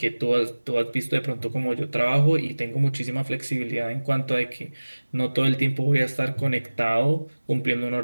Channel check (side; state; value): both; inverted; correlation -1.00